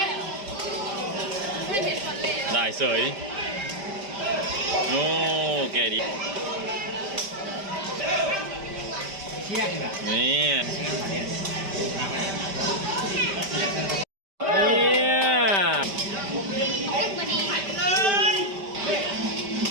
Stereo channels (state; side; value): late; left; 5.1 ms